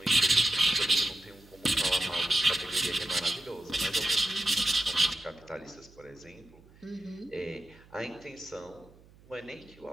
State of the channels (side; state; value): right; noise; hum, 25 dB below the sound